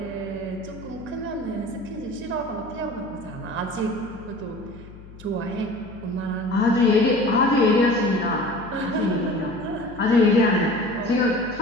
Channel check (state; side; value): noise; left; hum, 18 dB below the sound